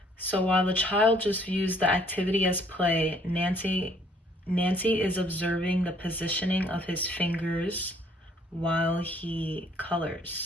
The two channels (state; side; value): normal; both; correlation 0.62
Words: So while the child just views the activity as play, Nancy is observing the positioning of his fingers while he